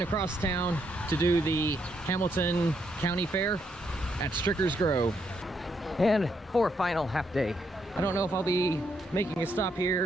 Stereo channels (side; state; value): both; normal; correlation 0.76